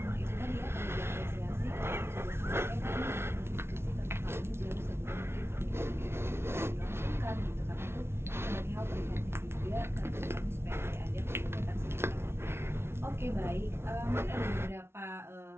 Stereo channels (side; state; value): left; late; 0.12 ms